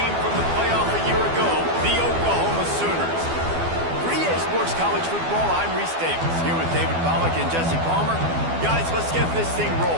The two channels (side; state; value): left; late; 12 ms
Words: from the playoff a year ago, the Oklahoma Sooners. For EA Sports College Football, I'm Reese Davis, here with David Pollack and Jesse Palmer. Guys, let's get this thing